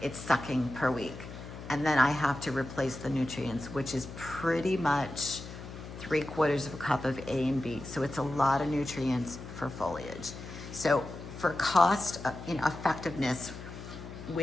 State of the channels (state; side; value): noise; left; hum, 12 dB below the sound